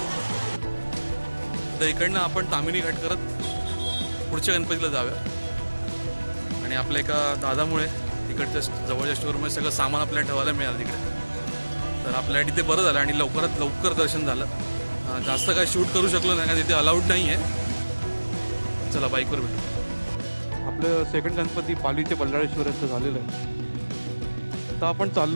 तर इकडनं आपण तामिनी घाट करत पुढच्या गणपतीला जाऊया. आणि आपल्या एका दादामुळे तिकडच्या जवळच्या स्टोअरमध्ये सगळं सामान आपल्याला ठेवायला मिळालं तिकडे. तर आपल्याला तिथे बरं झालं आणि लवकरात लवकर दर्शन झालं. जास्त काय शूट करू शकलो नाही, तिथे अलाउड नाही आहे. चला बाईकवर भेटू. आपलं सेकंड गणपती पालीचे बल्लाळेश्वराचं झालेलं आहे. आता आपण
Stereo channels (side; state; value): both; inverted; correlation -1.00